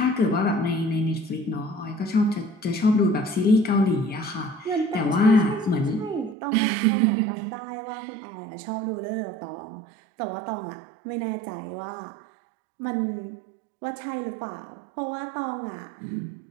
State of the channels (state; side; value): drops out; left; at 6.4 s